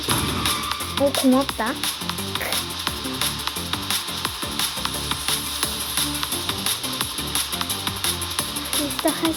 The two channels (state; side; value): identical; both; correlation 1.00